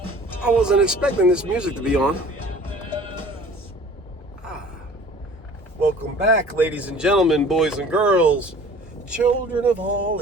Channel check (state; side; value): normal; both; correlation 0.47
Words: I wasn't expecting this music to be on. Welcome back, ladies and gentlemen, boys and girls, children of all